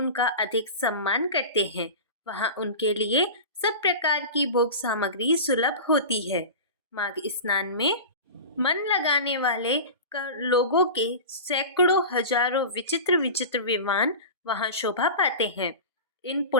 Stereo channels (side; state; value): both; inverted; correlation -0.30